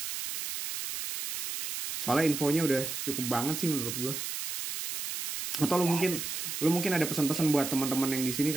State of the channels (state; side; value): noise; right; hiss, 5 dB below the sound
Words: Soalnya infonya udah cukup banget sih menurut gue. Atau lu mungkin ada pesan-pesan buat teman-teman yang di sini,